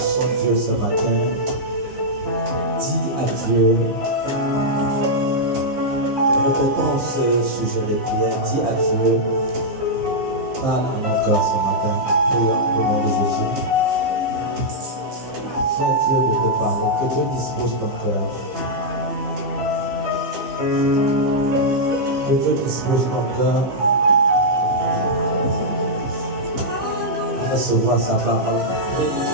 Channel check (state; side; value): late; left; 15 ms